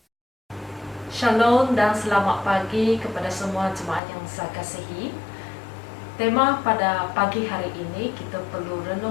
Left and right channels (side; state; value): right; drops out; at 4.0 s